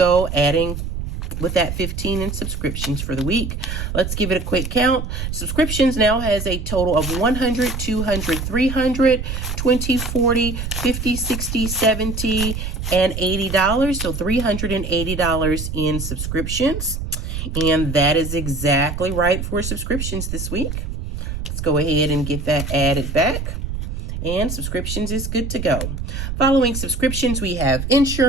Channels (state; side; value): noise; right; rumble, 5 dB below the sound